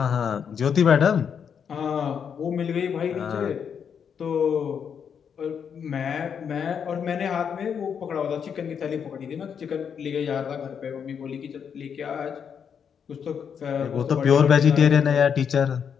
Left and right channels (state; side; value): quieter; right; 7.3 dB